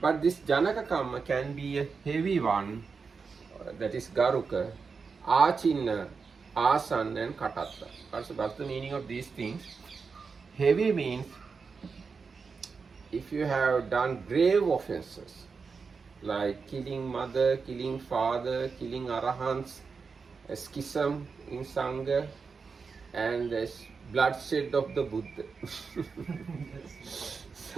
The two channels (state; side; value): quieter; left; 5.1 dB